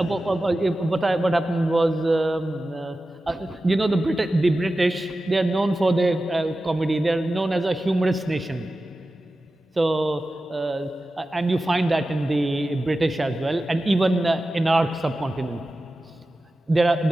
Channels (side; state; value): both; normal; correlation 0.94